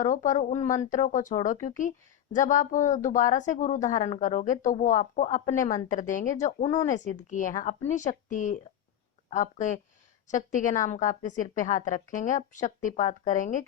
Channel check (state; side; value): quieter; right; 10.4 dB